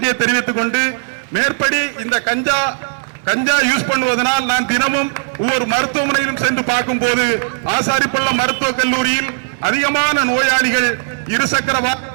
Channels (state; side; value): silent; left; digital silence